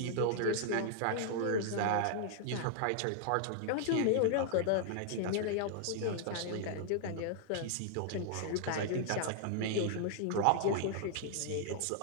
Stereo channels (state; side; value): different; both; correlation 0.00